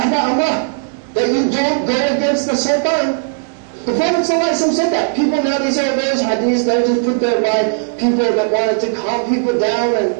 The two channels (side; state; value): left; silent; digital silence